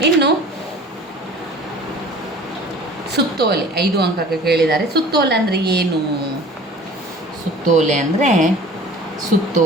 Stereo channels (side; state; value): both; normal; correlation 0.45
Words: ಇನ್ನು ಸುತ್ತೋಲೆ 5 ಅಂಕಕ್ಕೆ ಕೇಳಿದ್ದಾರೆ. ಸುತ್ತೋಲೆ ಅಂದರೆ ಏನು? ಸುತ್ತೋಲೆ ಅಂದರೆ,